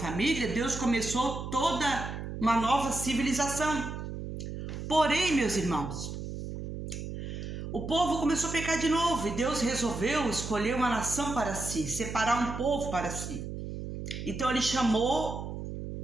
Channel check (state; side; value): noise; right; hum, 7 dB below the sound